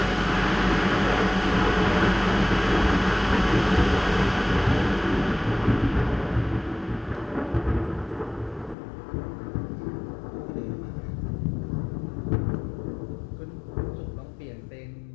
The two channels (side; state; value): right; drops out; at 8.8 s